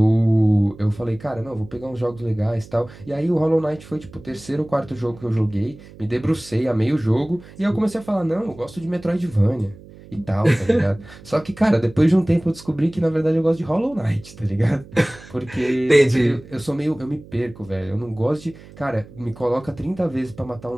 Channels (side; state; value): right; noise; hum, 20 dB below the sound